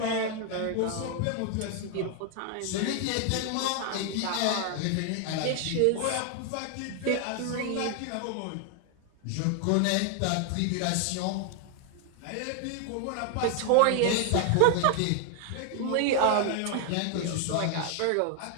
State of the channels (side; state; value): both; different; correlation 0.00